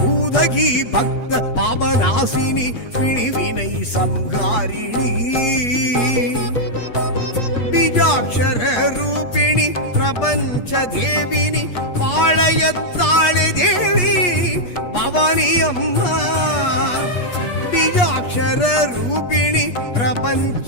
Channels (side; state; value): right; late; 8.4 ms